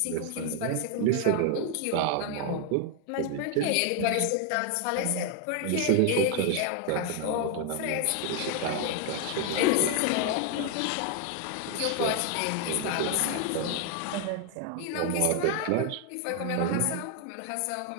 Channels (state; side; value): different; both; correlation 0.01